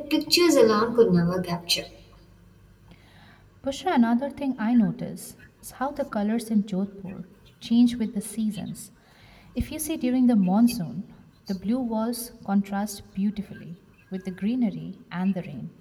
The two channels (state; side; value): identical; both; correlation 1.00